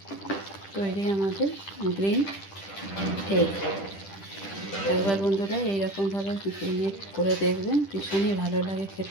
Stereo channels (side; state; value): right; late; 10 ms